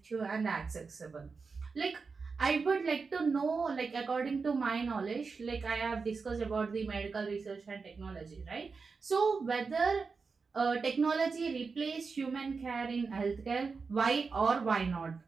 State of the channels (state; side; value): quieter; left; 4.8 dB